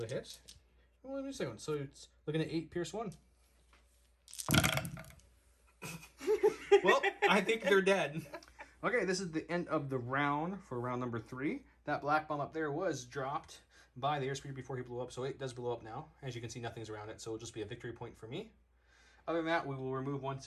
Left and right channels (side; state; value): both; identical; correlation 1.00